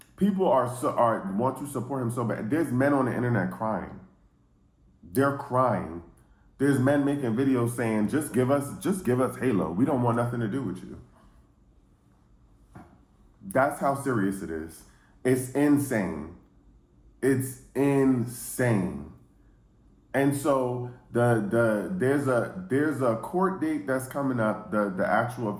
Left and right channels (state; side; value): identical; both; correlation 1.00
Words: People want to support him so bad. There's men on the internet crying. They're crying. There's men making videos saying, just give us Halo. We don't want nothing to do with you. That's how serious it is. It's insane. It's insane. And so there's a court date that's coming up, the actual